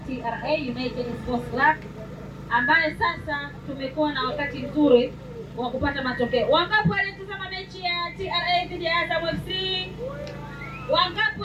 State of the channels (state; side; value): identical; both; correlation 1.00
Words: TRA United Sports Club, ambaye sasa tumekuwa na wakati mzuri wa kupata matokeo. Wangapi walitazama mechi ya TRA dhidi ya Azam FC? Wangapi